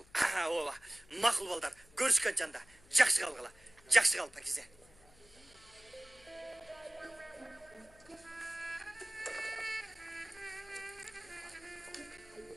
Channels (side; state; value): left; noise; hum, 26 dB below the sound